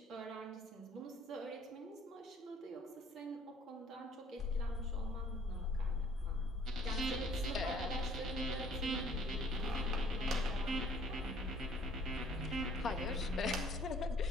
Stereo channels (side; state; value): both; normal; correlation 0.58